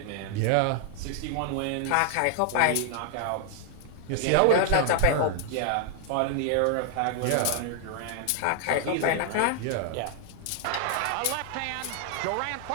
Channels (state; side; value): different; both; correlation 0.00